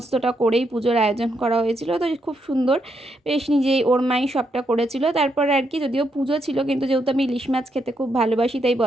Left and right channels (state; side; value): normal; both; correlation 0.79